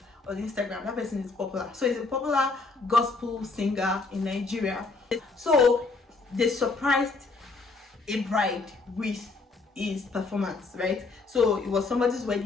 on Instagram, that person is popular. So he's a popular gospel singer in Nigeria. So they surprised a bride with his performance, right? So it was somebody's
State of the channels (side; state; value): right; quieter; 3.9 dB